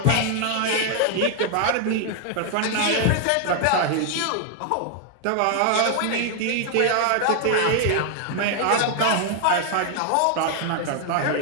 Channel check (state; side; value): different; both; correlation 0.00